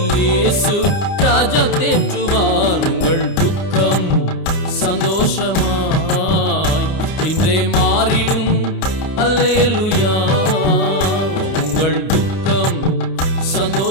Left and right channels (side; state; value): right; late; 30 ms